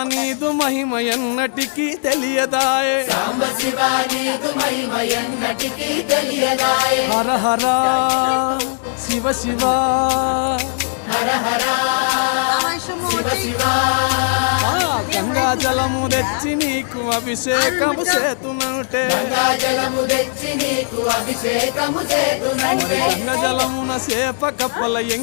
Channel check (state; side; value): silent; right; digital silence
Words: నీదు మహిమ ఎన్నటికీ తెలియదాయే సాంబ శివ నీదు మహిమ ఎన్నటికీ తెలియదాయే హర హర శివ శివ హర హర శివ శివ గంగా జలము తెచ్చి నీకు అభిషేకము చేతునంటే గంగా జలము తెచ్చి నీకు అభిషేకము చేతునంటే గంగా జలమున సేప కప్పల